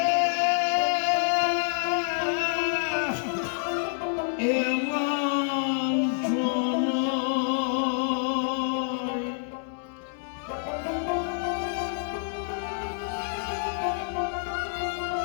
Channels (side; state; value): right; silent; digital silence